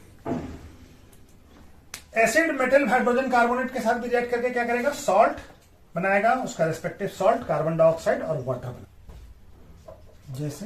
Acid metal hydrogen carbonate के साथ भी रिएक्ट करके क्या करेगा, सॉल्ट बनाएगा, उसका रिस्पेक्टिव सॉल्ट, कार्बन डाइऑक्साइड और वाटर बना,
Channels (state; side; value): identical; both; correlation 1.00